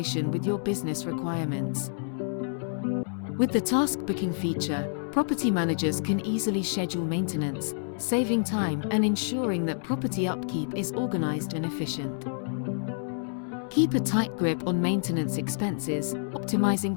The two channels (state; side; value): silent; right; digital silence